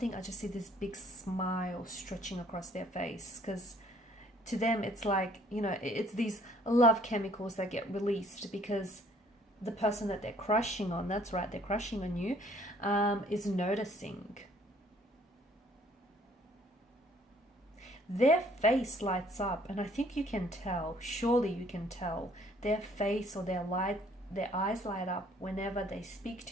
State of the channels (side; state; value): both; normal; correlation 0.60